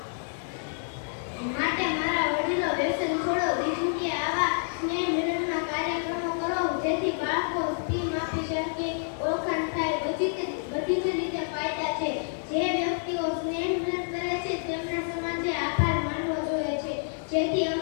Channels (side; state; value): right; silent; digital silence